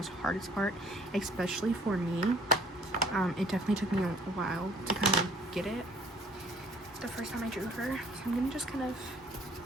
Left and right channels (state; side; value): normal; both; correlation 0.56